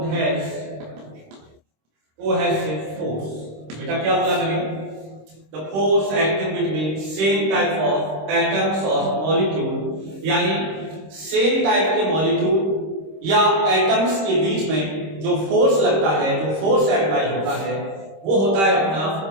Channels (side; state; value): left; late; 26 ms